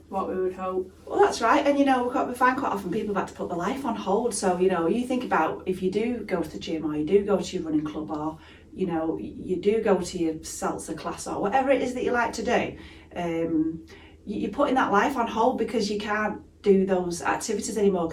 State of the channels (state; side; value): identical; both; correlation 1.00